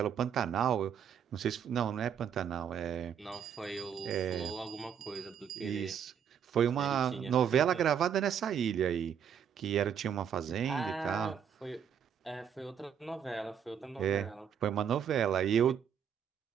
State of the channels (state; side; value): quieter; left; 8.1 dB